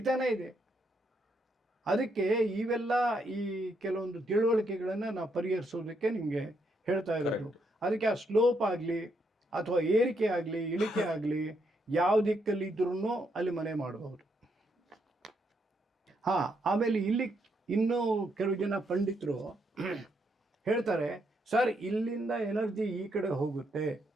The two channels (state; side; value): normal; both; correlation 0.77